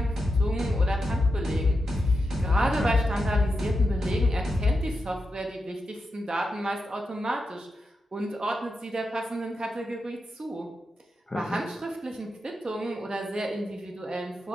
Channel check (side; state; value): both; normal; correlation 0.88